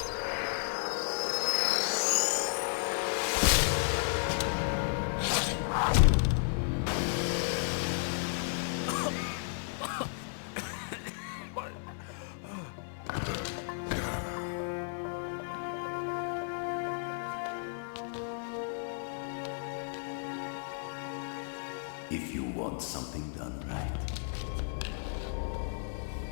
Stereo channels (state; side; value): silent; right; 55 dB below the other